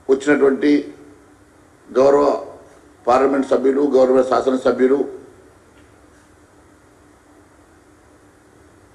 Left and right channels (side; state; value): both; identical; correlation 1.00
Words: వచ్చినటువంటి గౌరవ పార్లమెంట్ సభ్యులు, గౌరవ శాసనసభ్యులు,